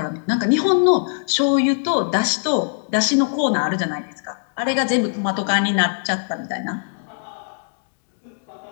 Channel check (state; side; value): silent; right; digital silence